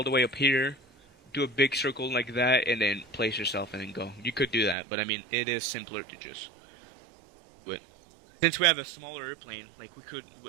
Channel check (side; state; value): left; drops out; at 4.8 s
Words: up here, do a big circle like that, and then place yourself and then go. You could do that, but I mean, it is simpler to just do it. Since we have a smaller airplane, like we could,